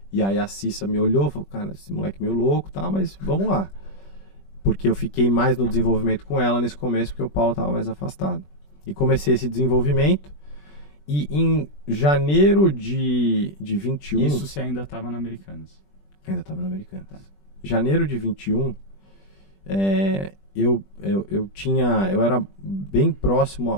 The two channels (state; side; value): late; right; 20 ms